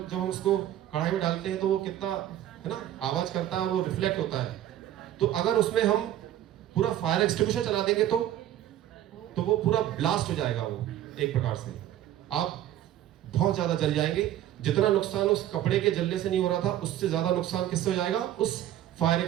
जब हम उसको कढ़ाई में डालते हैं तो वो कितना, है ना, आवाज करता है, वो रिफ्लेक्ट होता है। तो अगर उसमें हम पूरा फायर एक्सटिंग्विशर चला देंगे तो वो पूरा ब्लास्ट हो जाएगा, वो एक प्रकार से आप बहुत ज्यादा जल जाएंगे। जितना नुकसान उस कपड़े के जलने से नहीं हो रहा था, उससे ज्यादा नुकसान किससे हो जाएगा, उस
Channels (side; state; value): left; quieter; 12.4 dB